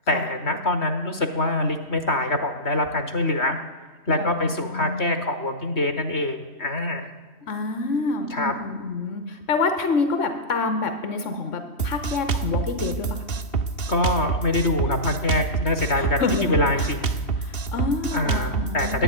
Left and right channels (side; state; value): right; late; 2.8 ms